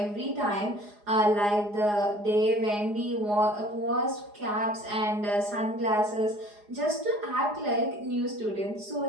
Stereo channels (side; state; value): left; late; 4.8 ms